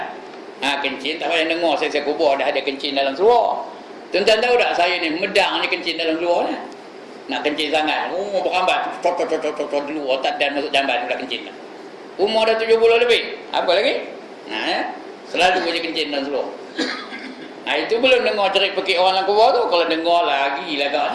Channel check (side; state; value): both; identical; correlation 1.00